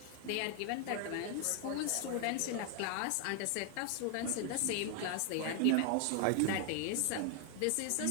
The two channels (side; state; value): both; different; correlation 0.00